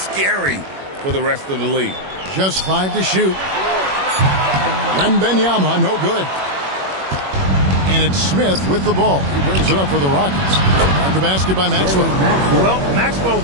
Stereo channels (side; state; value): left; late; 21 ms